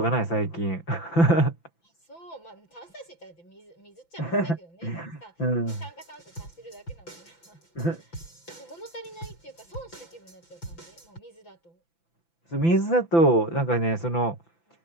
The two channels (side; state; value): right; late; 5.9 ms